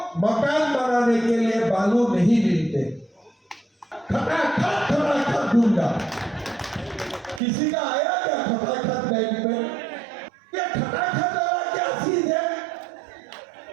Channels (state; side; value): drops out; left; at 7.4 s